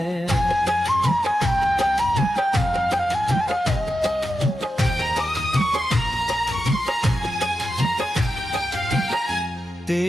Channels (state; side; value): normal; both; correlation 0.89